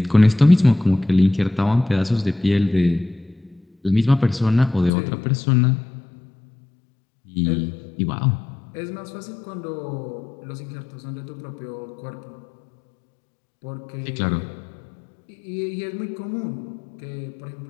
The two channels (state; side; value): drops out; right; at 4.9 s